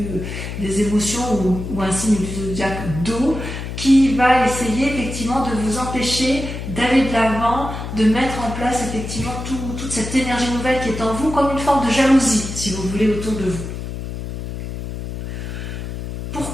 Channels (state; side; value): noise; left; hum, 7 dB below the sound